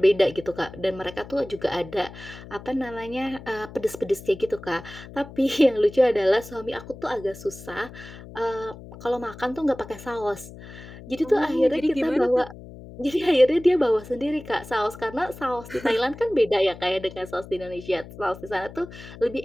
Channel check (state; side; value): noise; left; hum, 16 dB below the sound